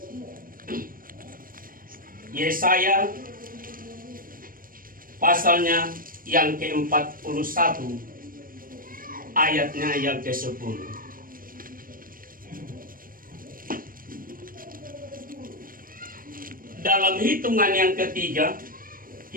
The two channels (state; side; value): late; left; 0.41 ms